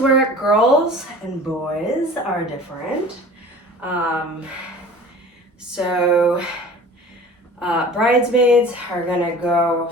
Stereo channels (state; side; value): normal; both; correlation 0.42